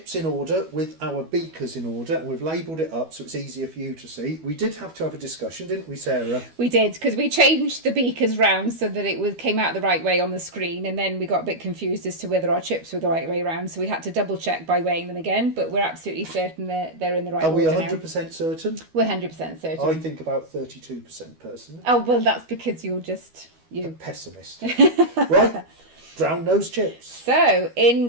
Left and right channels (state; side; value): late; left; 12 ms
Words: in order with our beakers in order, and we've labelled it up so it's easier for you to see. We did have to have a discussion, didn't we, Sarah? We did, because we changed the beakers round so that it came out the right way on the screen, and then we got a bit confused as to whether our chips were the right way round, so we had to double check by weighing them again, but we're absolutely certain they're in the right order. Are we 100% certain? We're 100% certain. I think about 32% personally. Oh, well, that's because you're just A pessimist. Right, drown those chips. So, in